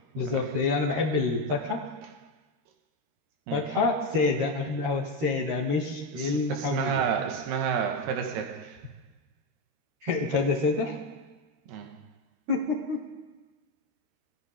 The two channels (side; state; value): left; late; 13 ms